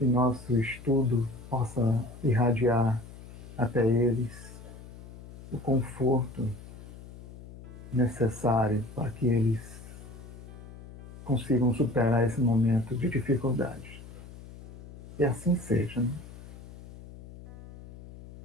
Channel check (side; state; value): left; noise; hum, 16 dB below the sound